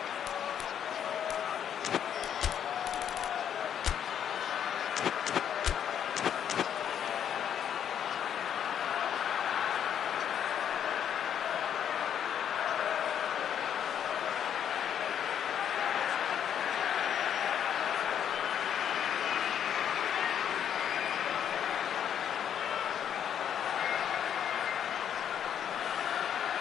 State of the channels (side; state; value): right; quieter; 9.1 dB